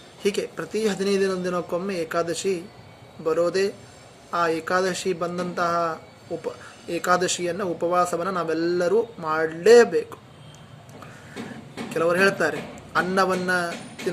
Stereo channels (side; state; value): both; identical; correlation 1.00